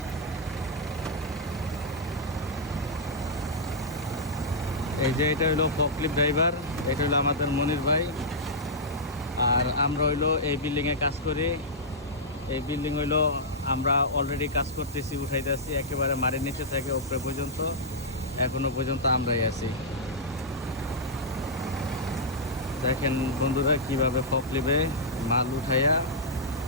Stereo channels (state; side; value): normal; both; correlation -0.10